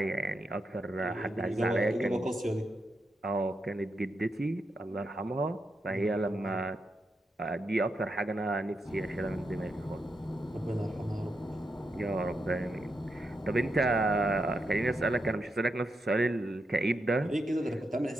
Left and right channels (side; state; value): both; normal; correlation 0.84